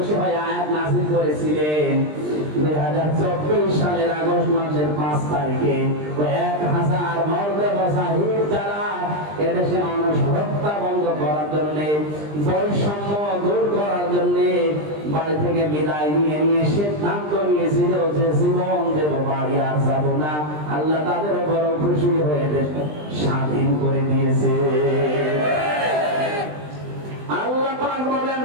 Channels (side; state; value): left; late; 20 ms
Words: হয়ে আয়াত নাযিল করেছিলেন, 2024 সালের আগস্ট মাসের 5 তারিখে 1000 মর্দে মুজাহিদ যারা এদেশে মানুষ হত্যা বন্ধ করার জন্য, বৈষম্য দূর করার জন্য বাড়ি থেকে বিদায় নিয়ে সিদ্ধান্ত নিয়েছিল যে জীবন দেব, বাড়ি আর যাব না, আল্লাহ তাদের উপর খুশি হয়ে স্বাধীন করে দিয়েছে। আল্লাহ পাক বলেন